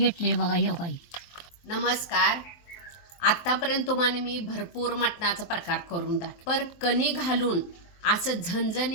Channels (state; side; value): late; right; 23 ms